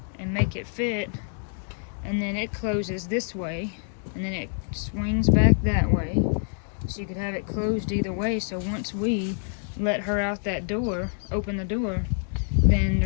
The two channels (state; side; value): silent; right; 60 dB below the other